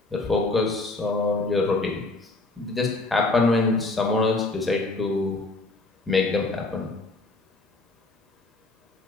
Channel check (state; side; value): quieter; right; 3.2 dB